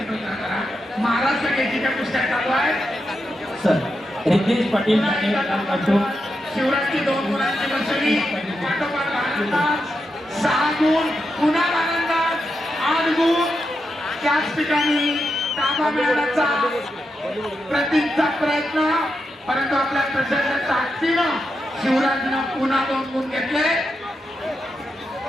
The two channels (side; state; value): both; normal; correlation 0.86